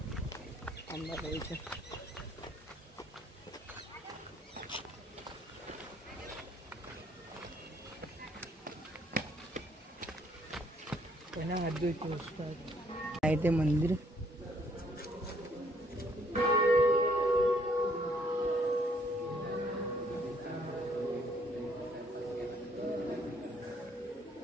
अंबाबाईच्या. आहे ते मंदिर.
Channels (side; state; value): both; normal; correlation 0.65